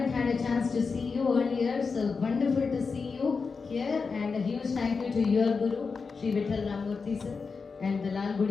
had a chance to see you earlier, so wonderful to see you here, and a huge thank you to your Guru, Sri Vittal Ramurthy sir, and the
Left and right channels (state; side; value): quieter; right; 4.9 dB